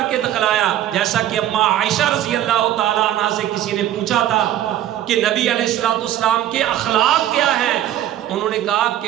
کے دکھلایا. جیسا کہ اما عائشہ رضی اللہ تعالیٰ عنہ سے کسی نے پوچھا تھا کہ نبی علیہ الصلوۃ والسلام کے اخلاق کیا ہیں، انہوں نے کہا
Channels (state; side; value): quieter; left; 12.2 dB